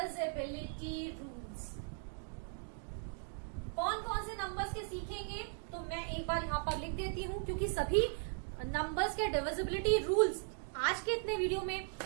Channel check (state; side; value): silent; left; 52 dB below the other